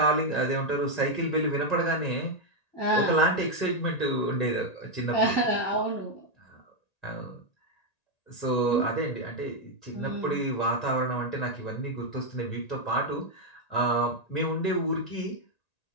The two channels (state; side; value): late; right; 1.9 ms